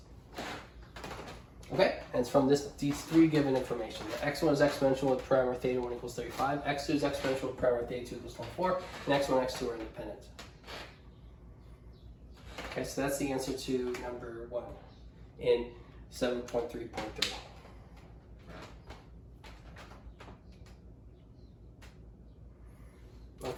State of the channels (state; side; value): identical; both; correlation 1.00